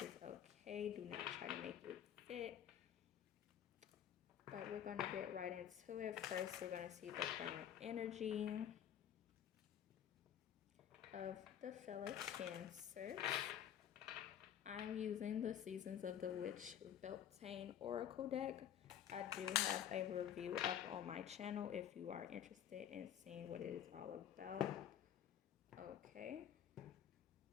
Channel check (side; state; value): right; quieter; 9.9 dB